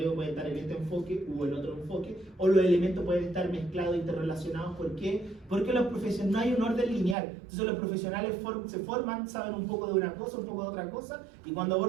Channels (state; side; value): drops out; left; at 7.2 s